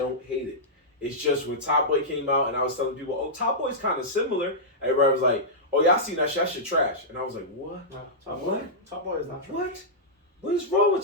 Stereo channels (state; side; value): normal; both; correlation -0.12